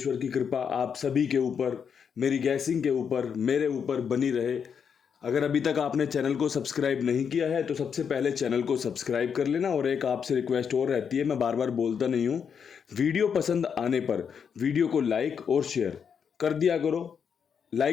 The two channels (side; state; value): right; quieter; 7.0 dB